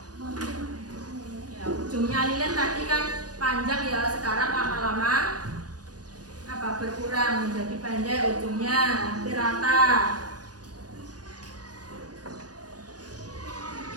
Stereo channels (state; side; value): late; left; 0.68 ms